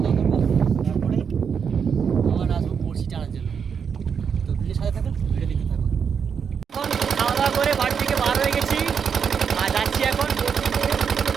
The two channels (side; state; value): left; quieter; 6.8 dB